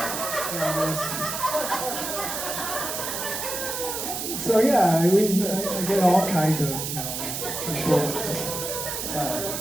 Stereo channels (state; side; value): noise; right; hiss, 4 dB below the sound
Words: So yeah, I mean, I get all kinds of, people.